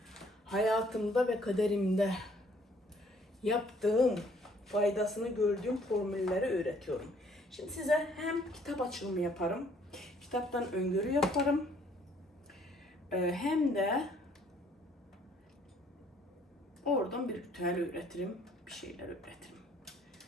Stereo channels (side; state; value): both; normal; correlation 0.62